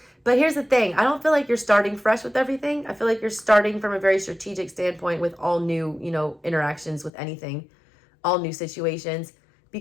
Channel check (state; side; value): drops out; right; at 7.1 s